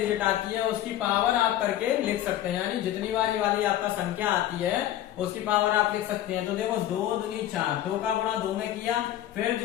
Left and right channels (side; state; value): right; quieter; 12.6 dB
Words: आती है उसकी पावर आप करके लिख सकते हैं, यानी जितनी बार ये वाली आपका संख्या आती है उसकी पावर आप लिख सकते हैं। तो देखो 2 दूनी 4, 2 का गुणा 2 में किया, फिर